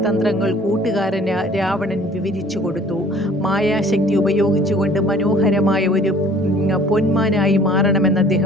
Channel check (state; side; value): normal; both; correlation 0.52